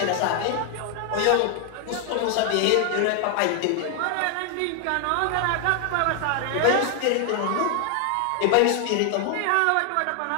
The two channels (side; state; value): both; different; correlation 0.00